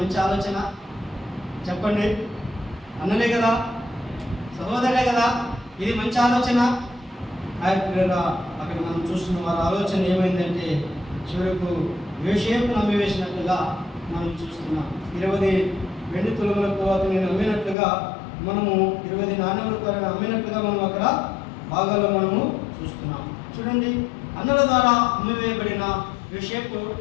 ఆలోచన చెప్పండి. అన్నలే కదా, సహోదరులే కదా, ఇది మంచి ఆలోచన. అక్కడ మనం చూస్తున్న వారి ఆలోచన ఏమైందంటే చివరకు యోసేపు నమ్మివేసినట్లుగా మనం చూస్తున్నాం. 20 వెండి తులములకు అతను నమ్మినట్లుగా, మనము 20 నాణ్యములకు అమ్మినట్లుగా మనం అక్కడ భాగాల్లో మనము చూస్తున్నాం. చూడండి, అన్నల ద్వారా అమ్మివేయబడిన యోసేపు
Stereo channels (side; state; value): right; drops out; at 17.8 s